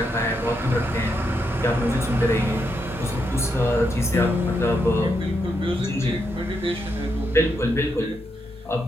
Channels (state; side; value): normal; both; correlation 0.81